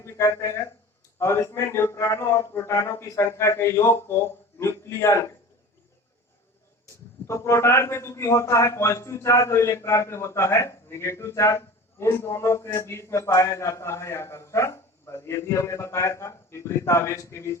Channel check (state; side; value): normal; both; correlation 0.37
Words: भी कहते हैं, और इसमें न्यूट्रॉनों और प्रोटॉनों की संख्या के योग को न्यूक्लियन कहते हैं। तो प्रोटॉन पे चूंकि होता है पॉजिटिव चार्ज और इलेक्ट्रॉन पे होता है नेगेटिव चार्ज, इन दोनों के बीच में पाया जाता है आकर्षण बल। ये भी हमने बताया था, विपरीत आवेश के